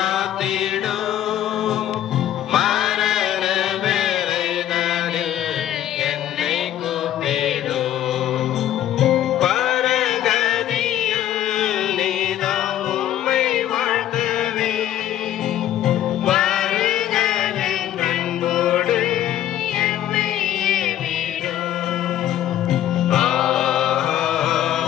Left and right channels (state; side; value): quieter; right; 11.8 dB